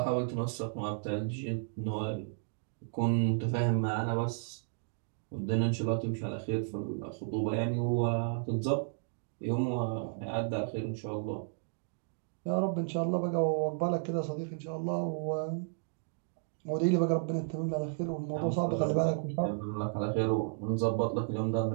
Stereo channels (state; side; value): silent; left; digital silence